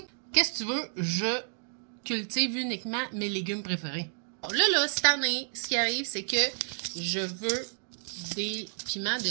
Qu'est-ce que tu veux? Je cultive uniquement mes légumes préférés. Là, cette année, ce qui arrive, c'est que je veux des piments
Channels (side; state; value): left; silent; 58 dB below the other